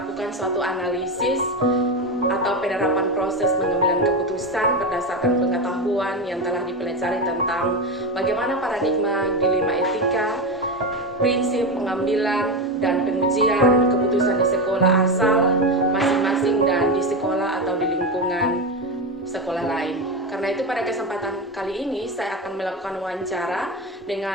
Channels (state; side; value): normal; both; correlation 0.16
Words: suatu analisis atau penerapan proses pengambilan keputusan berdasarkan pengetahuan yang telah dipelajari tentang bagaimana paradigma dilema etika, prinsip pengambilan dan pengujian keputusan di sekolah asal masing-masing dan di sekolah atau di lingkungan sekolah lain. Karena itu pada kesempatan kali ini saya akan melakukan wawancara